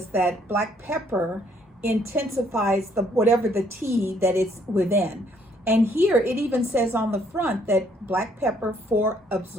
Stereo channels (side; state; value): both; normal; correlation 0.66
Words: that black pepper intensifies whatever the tea that it's within. And here it even says on the front that black pepper for